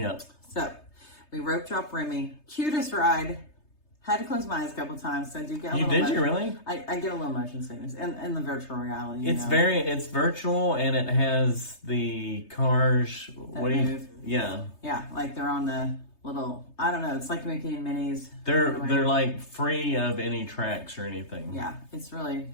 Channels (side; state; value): right; late; 3.3 ms